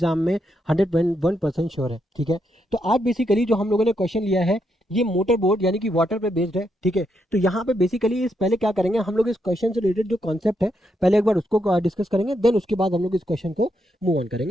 में 101% श्योर है। ठीक है, तो आज बेसिकली जो हम लोगों ने क्वेश्चन लिया है ये मोटर बोट यानी कि वाटर पे बेस्ड है। ठीक है, तो यहाँ पे बेसिकली इस पहले क्या करेंगे हम लोग, इस क्वेश्चन से रिलेटेड जो कॉन्सेप्ट है पहले एक बार उसको डिस्कस करेंगे, देन उसके बाद हम लोग इस क्वेश्चन को मूव ऑन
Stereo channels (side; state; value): both; normal; correlation 0.80